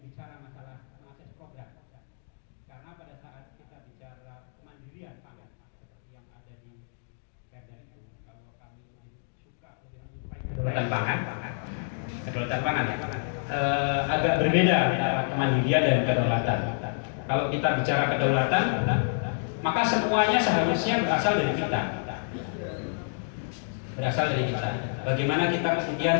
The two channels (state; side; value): silent; right; digital silence